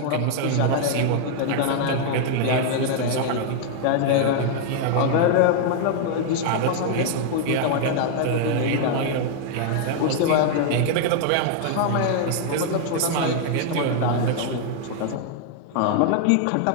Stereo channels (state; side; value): different; both; correlation 0.00